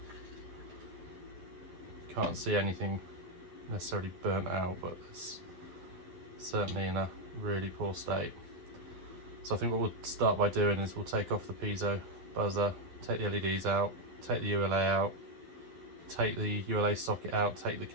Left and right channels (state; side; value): late; left; 12 ms